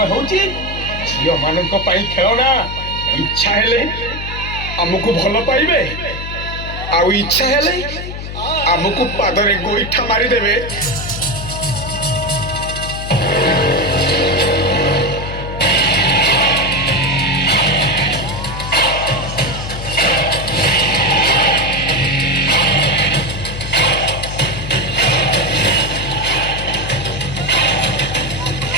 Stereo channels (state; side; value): noise; left; hum, 8 dB below the sound